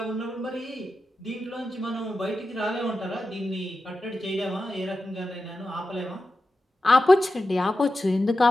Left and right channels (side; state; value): both; normal; correlation 0.91